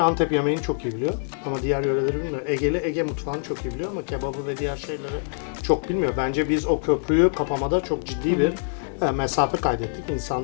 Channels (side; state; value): right; silent; digital silence